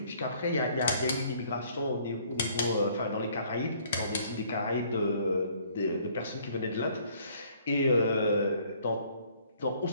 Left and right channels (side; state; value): both; inverted; correlation -0.60